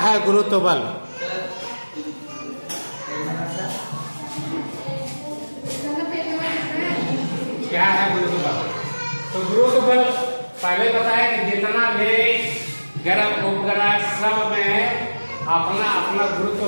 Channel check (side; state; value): both; inverted; correlation -1.00